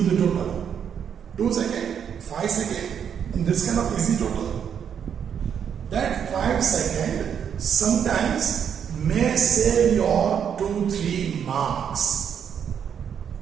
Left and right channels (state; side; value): quieter; left; 8.0 dB